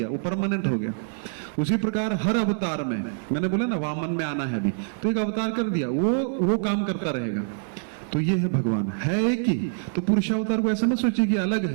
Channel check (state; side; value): silent; left; 61 dB below the other